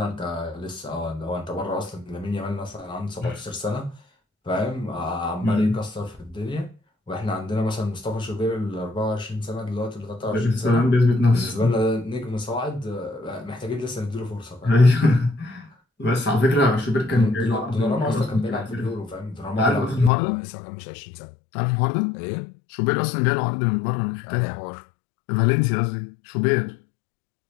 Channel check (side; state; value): right; drops out; at 20.1 s